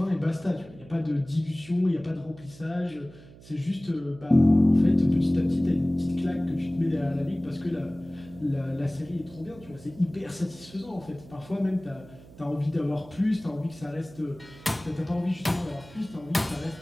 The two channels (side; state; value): right; noise; hum, 20 dB below the sound